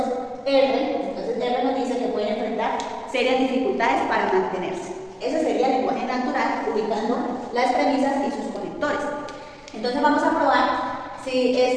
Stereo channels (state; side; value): identical; both; correlation 1.00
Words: R nos dice que pueden enfrentar serias dificultades para mantenerse. Ese sería el lenguaje natural, ubicando las premisas y sus conectores. Entonces vamos a probar si